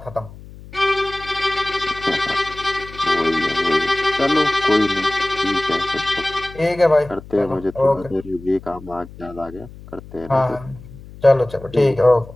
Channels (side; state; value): left; noise; hum, 17 dB below the sound